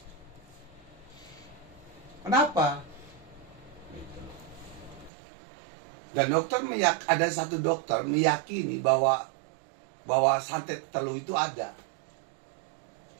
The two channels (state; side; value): drops out; left; at 5.1 s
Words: Kenapa? Gitu. Dan dokter ada satu dokter meyakini bahwa santet telu itu ada.